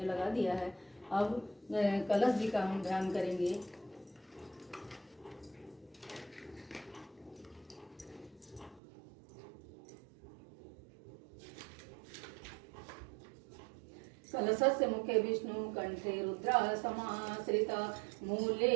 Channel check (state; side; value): drops out; left; at 8.8 s